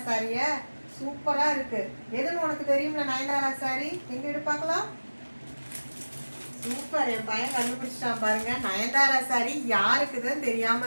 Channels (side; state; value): both; inverted; correlation -1.00